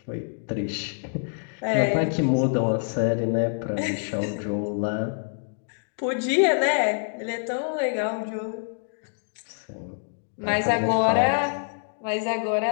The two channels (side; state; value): right; silent; digital silence